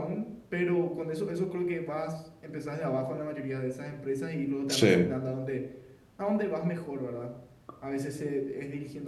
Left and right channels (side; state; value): both; identical; correlation 1.00